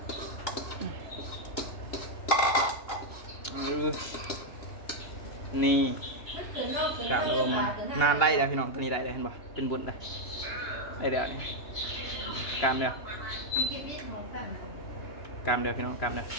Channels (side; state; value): right; late; 2.8 ms